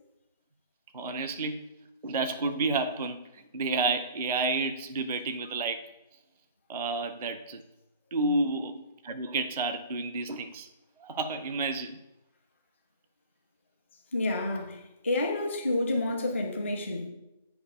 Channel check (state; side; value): inverted; both; correlation -0.45